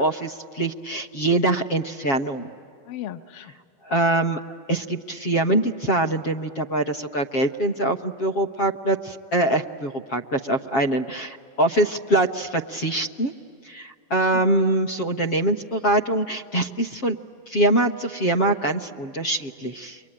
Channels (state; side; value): late; right; 7.4 ms